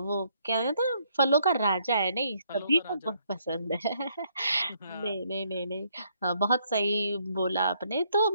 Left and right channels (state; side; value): inverted; both; correlation -0.70